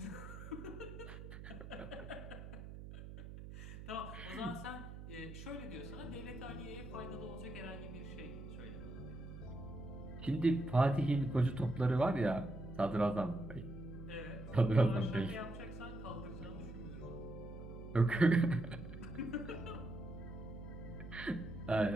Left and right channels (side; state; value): right; noise; hum, 11 dB below the sound